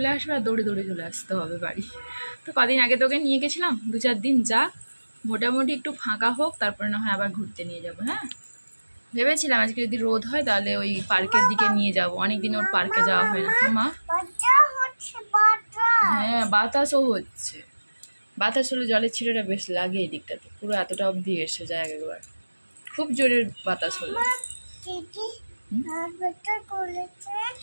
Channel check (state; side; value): inverted; both; correlation -1.00